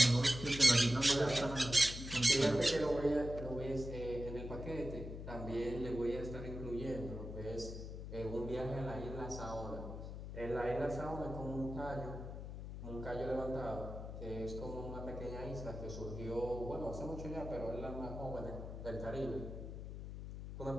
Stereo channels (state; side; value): noise; left; hum, 8 dB below the sound